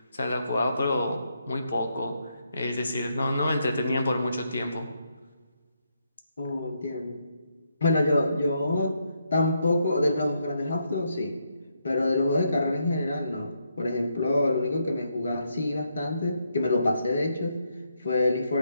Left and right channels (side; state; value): both; inverted; correlation -0.79